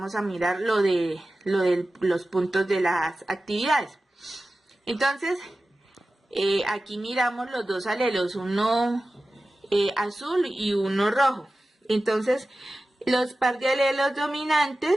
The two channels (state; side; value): normal; both; correlation 0.95